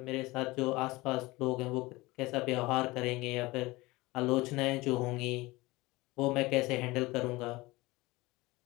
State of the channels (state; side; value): quieter; right; 21.4 dB